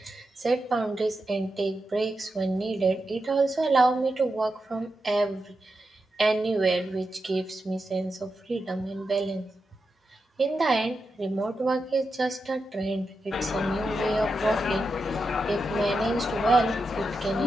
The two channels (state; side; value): normal; both; correlation 0.88